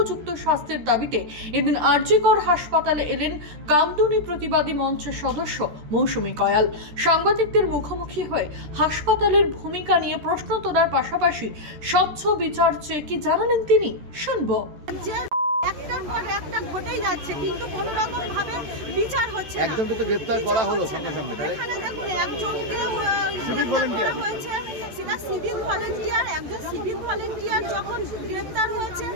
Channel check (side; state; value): left; late; 13 ms